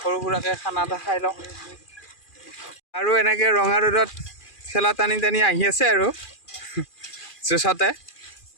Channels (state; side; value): late; right; 2.4 ms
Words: সৰু সুৰাকে খানা এটা খাই লওঁ আৰু এনেকে ৰঙা ৰদত খেলা টানি টানি আহি আছে আৰু জুছতে